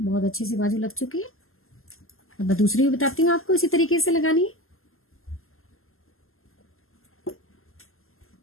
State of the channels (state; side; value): late; right; 0.62 ms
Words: अच्छे से बाजू लग चुकी है। अब मैं दूसरी भी बताती हूँ आपको इसी तरीके से लगानी है।